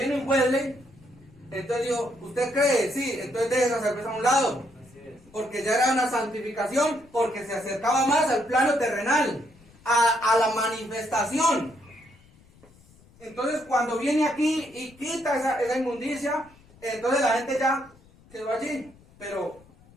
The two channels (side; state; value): left; noise; rumble, 27 dB below the sound